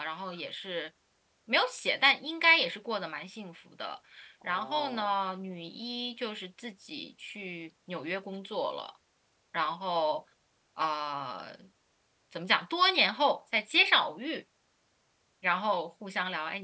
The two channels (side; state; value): both; identical; correlation 1.00